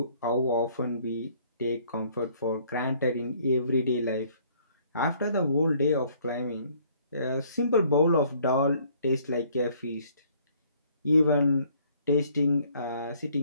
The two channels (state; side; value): inverted; both; correlation -0.61